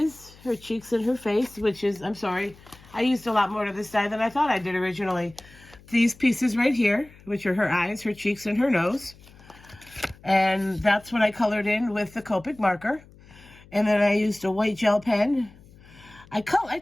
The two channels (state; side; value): noise; left; hum, 24 dB below the sound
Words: her cheeks and her face, which is, I'm sorry, I used a lot more of this die than I thought I did originally. These pieces right here, which are her eyes, her cheeks, and her nose. And that's what I colored in with the Copic marker. And then I used a white gel pen. I